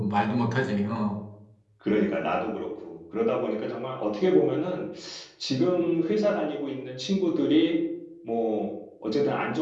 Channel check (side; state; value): both; identical; correlation 1.00